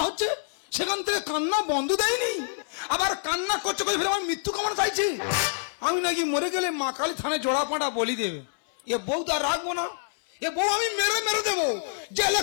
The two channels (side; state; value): right; silent; 60 dB below the other